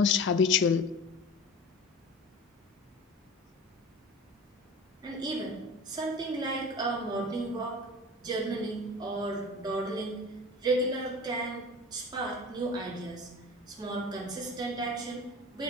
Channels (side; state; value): both; normal; correlation 0.36